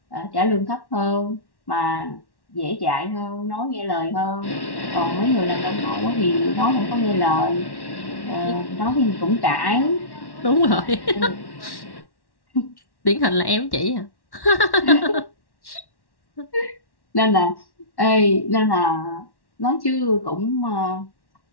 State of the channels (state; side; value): late; right; 1.1 ms